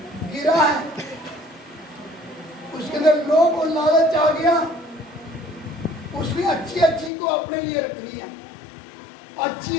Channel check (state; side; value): drops out; right; at 7.1 s